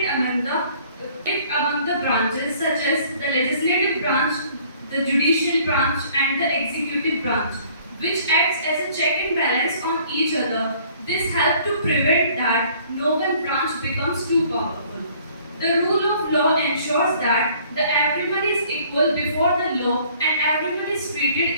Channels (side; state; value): both; inverted; correlation -0.57